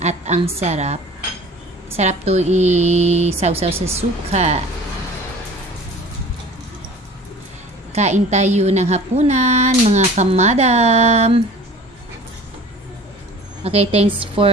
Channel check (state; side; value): normal; both; correlation 0.44